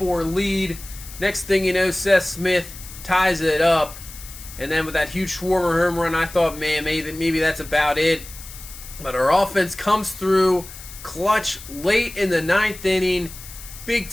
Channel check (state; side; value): noise; left; hiss, 15 dB below the sound